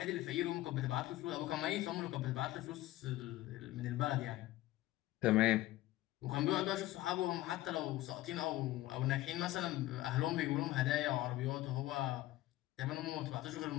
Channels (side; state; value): right; quieter; 16.3 dB